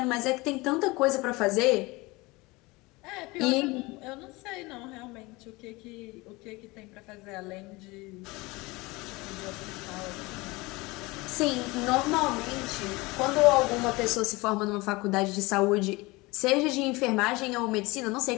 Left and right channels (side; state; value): right; quieter; 23.1 dB